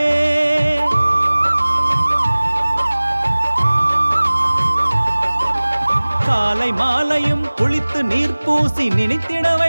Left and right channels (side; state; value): both; inverted; correlation -1.00